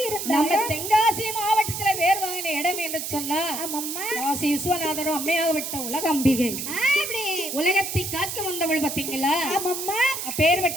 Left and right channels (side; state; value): right; noise; hiss, 5 dB below the sound